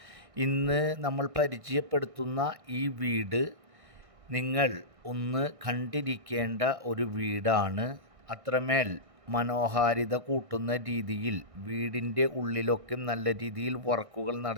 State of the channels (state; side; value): late; left; 1.6 ms